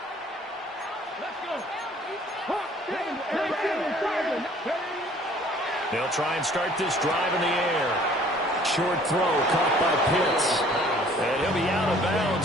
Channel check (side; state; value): both; normal; correlation 0.55